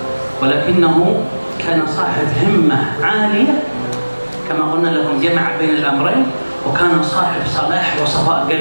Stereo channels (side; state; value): both; inverted; correlation -1.00